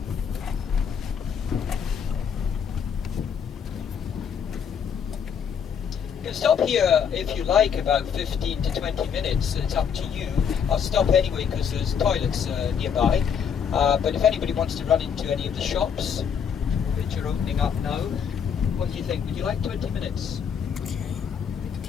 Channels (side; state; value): right; quieter; 7.3 dB